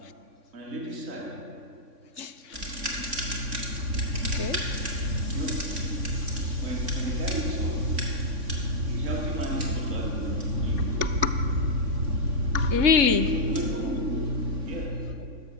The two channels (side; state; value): left; late; 3.5 ms